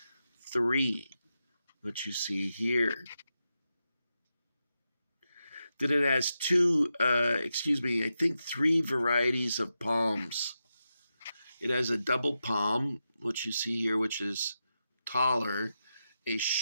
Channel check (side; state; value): both; inverted; correlation -0.88